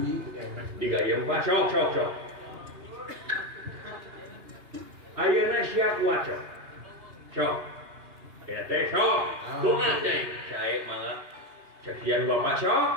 Digayung Pak, sok. Ayeuna sia kuat sok. Sok. Ya teh sok. Doa teh. Sae mah sekian Bapak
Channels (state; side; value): late; left; 2.8 ms